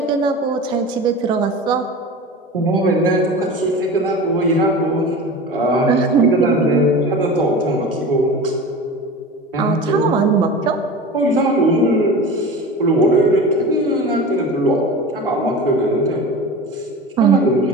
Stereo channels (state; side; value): normal; both; correlation 0.33